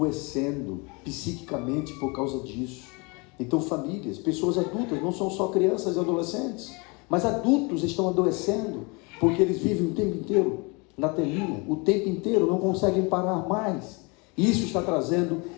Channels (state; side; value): quieter; right; 29.1 dB